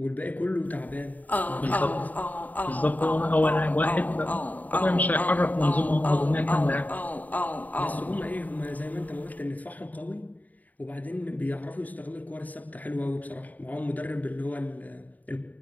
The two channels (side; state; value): right; late; 0.078 ms